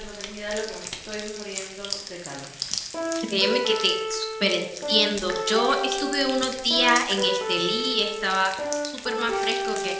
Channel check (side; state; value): both; identical; correlation 1.00